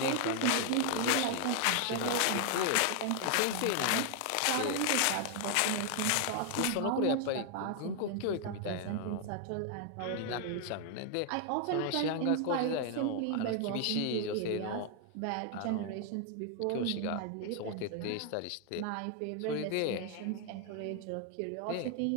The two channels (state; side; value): different; both; correlation 0.00